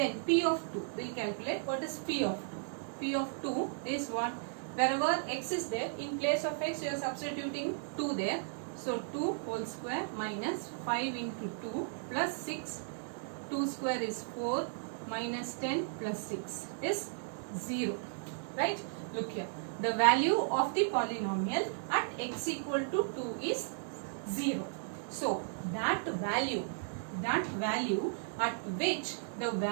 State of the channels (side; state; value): left; silent; 54 dB below the other